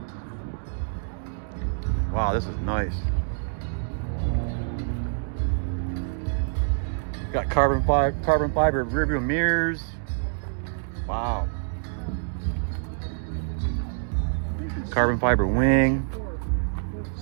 Wow, this is nice. Got carbon fiber rear view mirrors. Wow. Carbon fiber wing.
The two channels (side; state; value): left; silent; digital silence